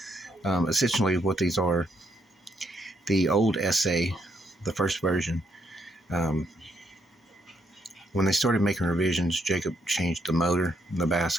Essentially what these are, the old SA, the first version, when they started making revisions, Jacob changed the motor, the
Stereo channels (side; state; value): both; normal; correlation 0.75